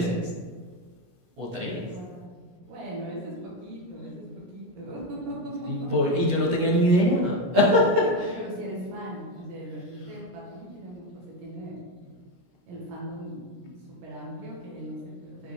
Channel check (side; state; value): left; late; 16 ms